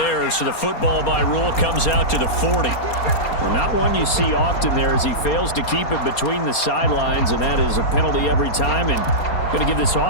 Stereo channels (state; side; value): late; right; 4.3 ms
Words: so the football by rule comes out to the 40. Well, not one you see often there as he fails to keep it between the sidelines, and that is a penalty every time. And Going to give this